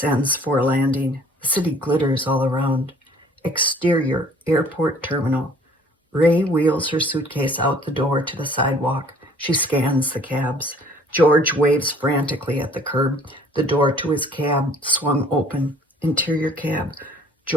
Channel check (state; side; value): normal; both; correlation 0.55